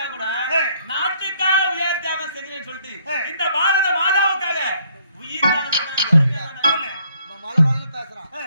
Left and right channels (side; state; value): both; inverted; correlation -0.66